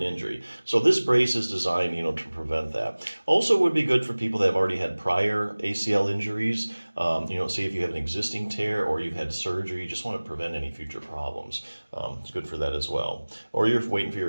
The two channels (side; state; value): both; inverted; correlation -1.00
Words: injury. So this brace is designed, to prevent that. Also would be good for people that have already had prior ACL injuries. Say if you have an existing tear or you've had surgery, you just want to prevent any future problems. It's good for that as well. Or you're waiting for